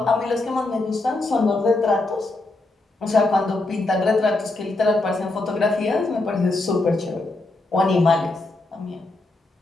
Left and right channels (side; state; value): right; quieter; 3.0 dB